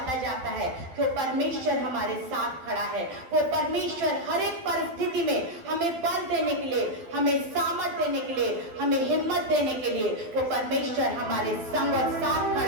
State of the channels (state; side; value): late; left; 12 ms